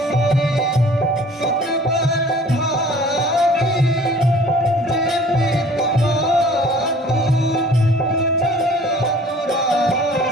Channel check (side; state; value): both; normal; correlation 0.49